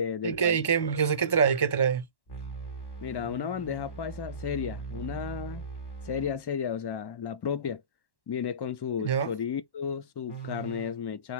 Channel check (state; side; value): late; right; 1.1 ms